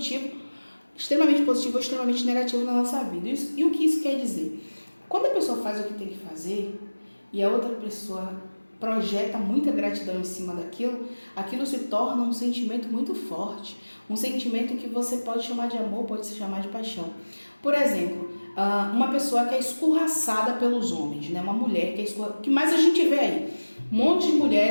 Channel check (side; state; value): both; inverted; correlation -1.00